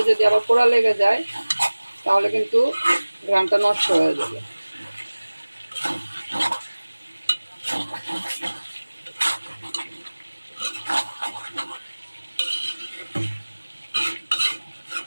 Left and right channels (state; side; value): inverted; both; correlation -1.00